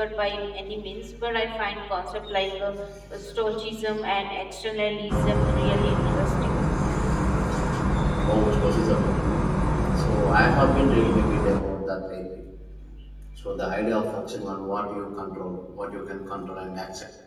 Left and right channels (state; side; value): identical; both; correlation 1.00